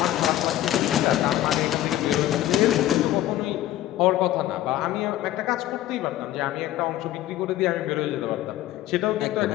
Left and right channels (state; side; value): quieter; right; 14.0 dB